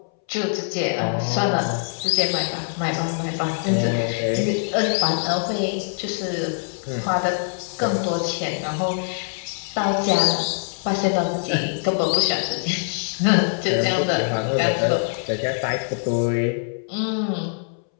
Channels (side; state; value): right; silent; 63 dB below the other